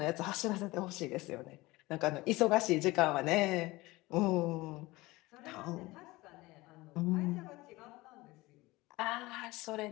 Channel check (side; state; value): right; quieter; 20.6 dB